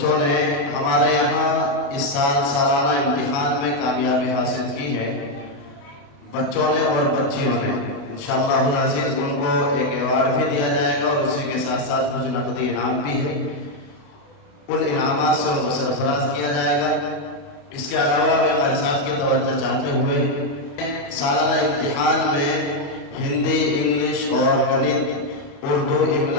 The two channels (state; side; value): late; right; 28 ms